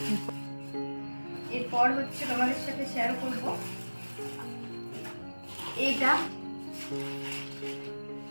এরপর হচ্ছে তোমাদের সাথে শেয়ার করব এইটা।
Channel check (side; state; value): both; inverted; correlation -1.00